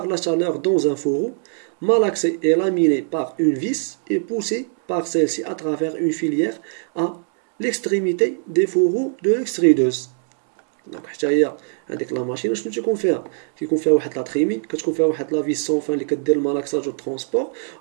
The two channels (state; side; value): silent; left; digital silence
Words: la chaleur dans un fourreau, malaxé et laminé par une vis et poussé par celle-ci à travers une filière à l'extrémité des fourreaux de l'extrudeuse. Donc حتى هي هذيك لا ماشين شنو تيكون فيها؟ كيكون فيها واحد لا تريمي، كتكون فيها واحد لا فيس سون فان اللي كدير المالاكساج والترونسبور،